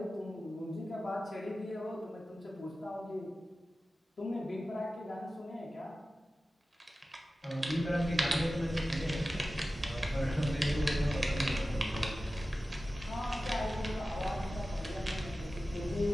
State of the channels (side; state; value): both; normal; correlation 0.95